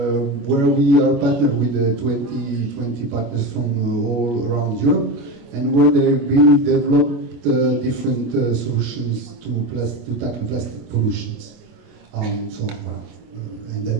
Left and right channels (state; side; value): late; left; 25 ms